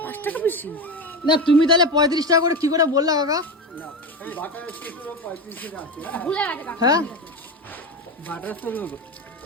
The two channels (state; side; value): normal; both; correlation 0.20